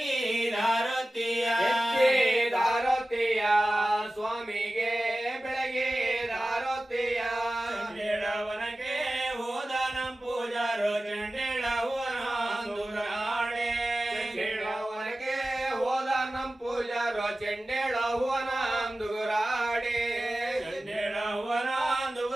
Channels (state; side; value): normal; both; correlation 0.96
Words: ದಾರತಿಯ ಸ್ವಾಮಿಗೆ ಬೆಳಗಿದಾರತಿಯ ಚಂಡೇಳವನಕ್ಕೆ ಹೋದ ನಂ ಪೂಜಾರು ಚಂಡೇಳವನಾಡೆ ಚಂಡೇಳವನಕ್ಕೆ ಹೋದ ನಂ ಪೂಜಾರು ಚಂಡೇಳವನಾಂದುರಾಡೆ